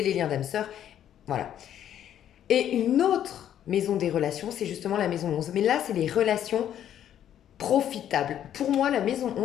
les liens d'âme sœur. Voilà. Et une autre maison des relations, c'est justement la maison 11. Mais là, c'est les relations profitables. Pour moi, la maison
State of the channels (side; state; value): right; quieter; 10.5 dB